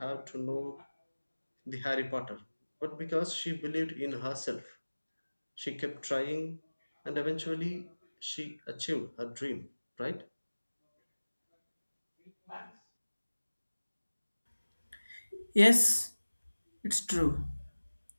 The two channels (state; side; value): inverted; both; correlation -1.00